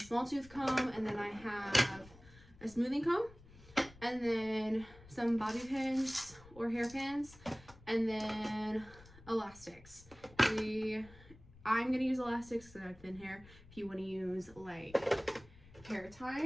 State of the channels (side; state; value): left; noise; rumble, 22 dB below the sound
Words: small tooth comb, and then I have a smoothing comb, and then some bobby pins or hairpins, and then elastics. I'm gonna use elastics because I have thin hair. If you want to use like hair